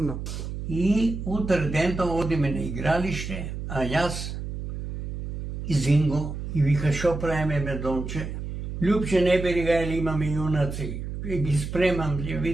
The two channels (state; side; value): noise; right; hum, 6 dB below the sound